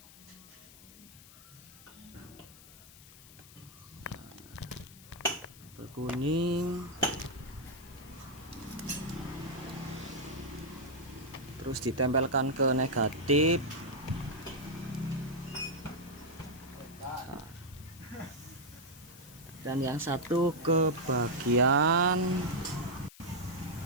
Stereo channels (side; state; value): left; noise; hiss, 20 dB below the sound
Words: Kabel kuning. terus ditempelkan ke negatif. Nah, dan yang satu ke bagian